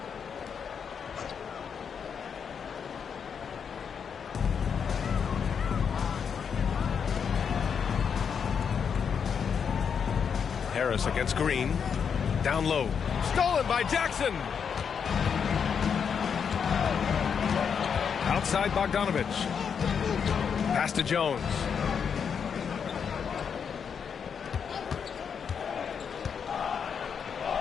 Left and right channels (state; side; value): quieter; right; 6.9 dB